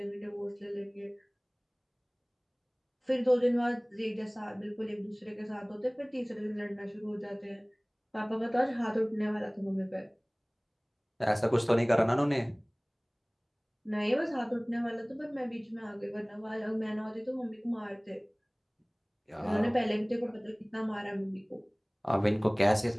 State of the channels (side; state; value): both; identical; correlation 1.00